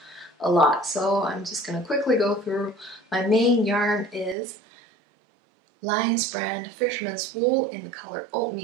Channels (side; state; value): left; drops out; at 4.4 s